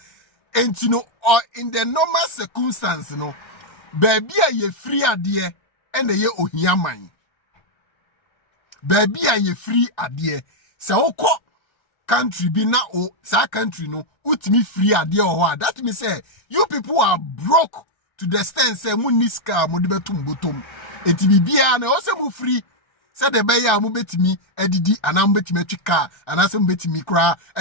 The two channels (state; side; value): late; right; 1.3 ms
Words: And you know, or in the normal circumstance, you know, baby are ye free idea and the ye ohia mine. Baby are ye free idea. So country be na o sa country no utimi free idea or what. That means say you people are broke to the extent say muniska mo de betum bottom. Eti bibia na o se mo free. Say the be ya mo betimi edidi anam betimi twika anasem betimi kra